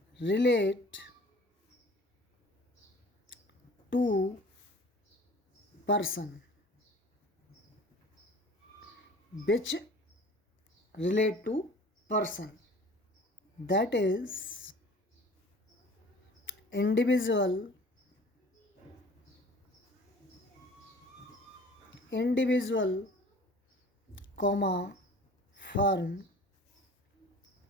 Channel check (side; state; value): both; normal; correlation 0.46